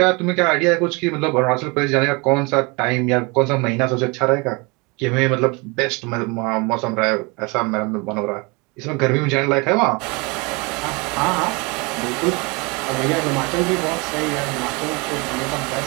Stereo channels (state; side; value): quieter; left; 28.2 dB